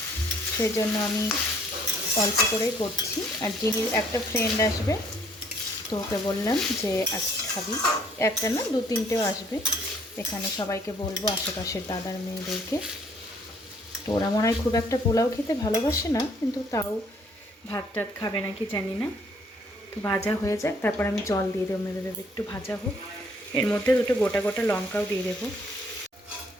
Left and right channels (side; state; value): both; normal; correlation 0.63